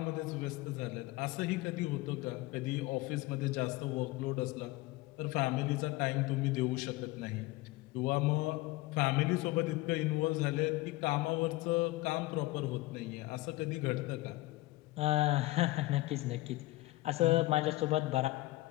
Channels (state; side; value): quieter; right; 19.6 dB